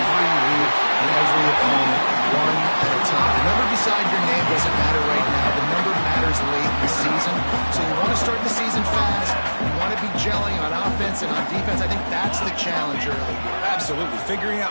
week and every opponent one at a time. The number beside your name doesn't matter right now. The number matters late in the season. So you want to start the season fast. You want to be gelling on offense and on defense. I think that's the challenge early. Absolutely. Figuring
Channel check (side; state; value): both; inverted; correlation -1.00